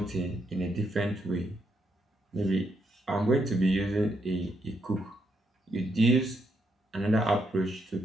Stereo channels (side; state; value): both; normal; correlation 0.78